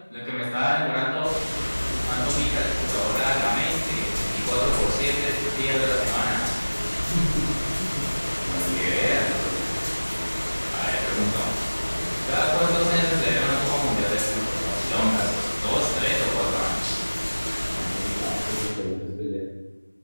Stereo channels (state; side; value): inverted; both; correlation -1.00